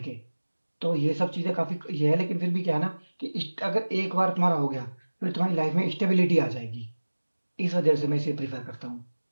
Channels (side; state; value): both; inverted; correlation -1.00